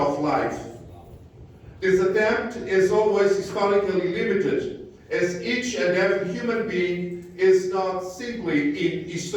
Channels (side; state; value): both; identical; correlation 1.00